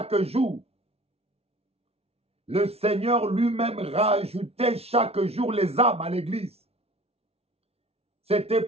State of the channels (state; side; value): late; left; 0.30 ms